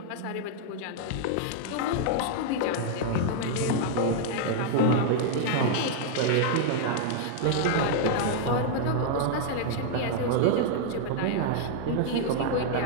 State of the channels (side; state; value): both; different; correlation 0.00